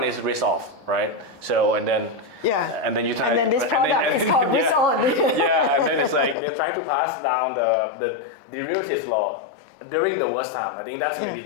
is risk off, right? So, and then, Yeah. and then you try, And then this product is called risk on. yeah, and then it's like they're trying to pass down the derivatives law during the worst time. I think that's maybe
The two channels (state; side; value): drops out; right; at 6.4 s